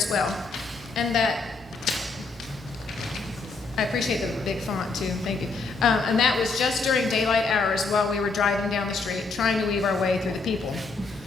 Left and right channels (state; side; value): quieter; right; 4.0 dB